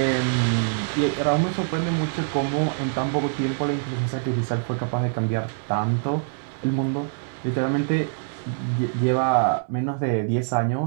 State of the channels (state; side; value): silent; left; 62 dB below the other